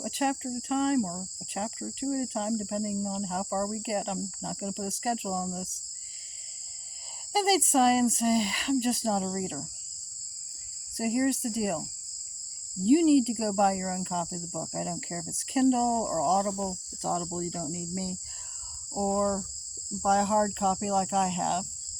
a chapter at a time or a chapter or two at a time, depending on how far we get. I'm not going to put a schedule on this. And they'd sigh and say, I'm just not a reader. So here's the deal. You need to go buy your own copy of the book. I don't care if it's Kindle or Audible. If it's Audible, you don't need me. Or buy a hard copy like I have.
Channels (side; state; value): both; identical; correlation 1.00